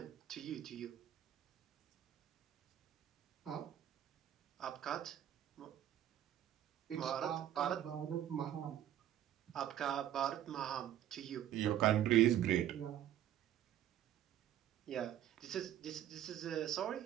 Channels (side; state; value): left; quieter; 11.5 dB